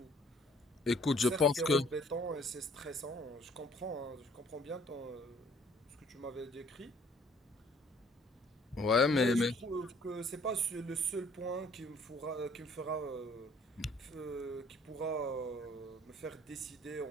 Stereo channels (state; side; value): normal; both; correlation 0.58